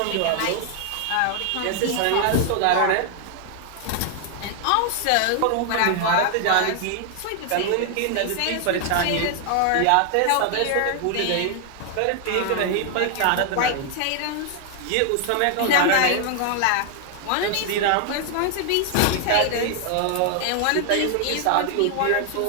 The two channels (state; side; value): different; both; correlation 0.00